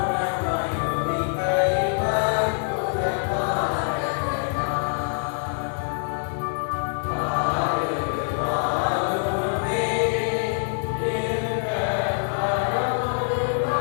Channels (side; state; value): right; silent; 62 dB below the other